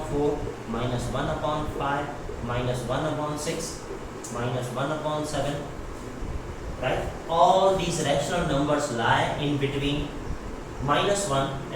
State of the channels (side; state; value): both; identical; correlation 1.00